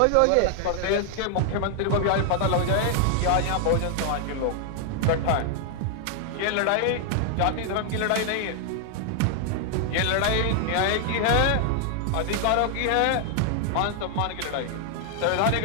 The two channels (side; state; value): both; different; correlation 0.00